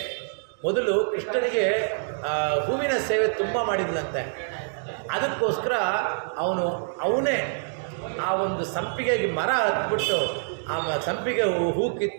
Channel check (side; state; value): left; silent; digital silence